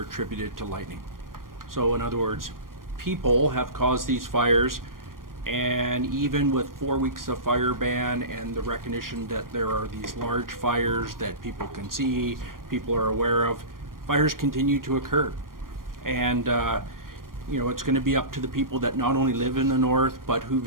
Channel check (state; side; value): late; left; 0.91 ms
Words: attributed to lightning. So in other words, people have caused these fires, and even with 4 weeks of fire ban and the recognition that there are these large fires that people can see, people are aware of, fires continue to occur. And it's going to be up to the people that not only live in the north, but who